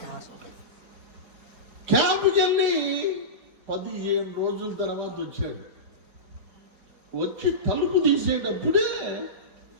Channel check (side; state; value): left; late; 4.6 ms